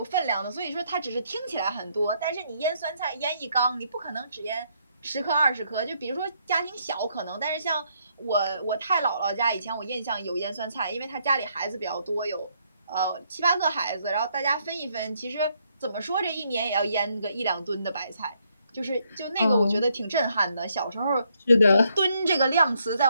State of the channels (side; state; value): both; inverted; correlation -0.73